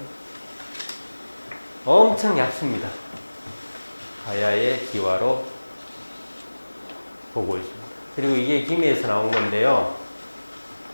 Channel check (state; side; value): inverted; both; correlation -1.00